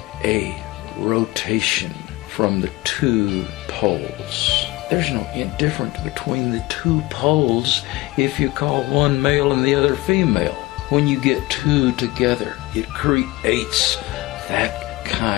a rotation from the two poles. There's no difference between the two poles if you call one male and the other female. When you get two together, it creates that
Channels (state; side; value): quieter; right; 20.1 dB